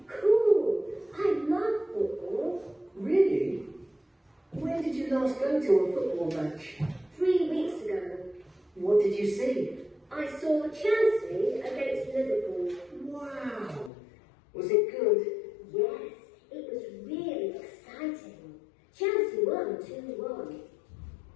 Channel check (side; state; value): right; drops out; at 13.9 s